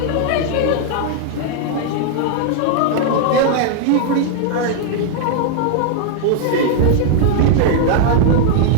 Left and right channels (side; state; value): both; different; correlation -0.01